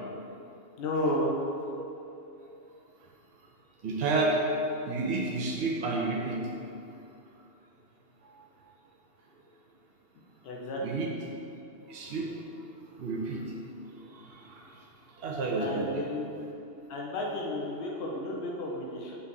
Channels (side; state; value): right; late; 2.8 ms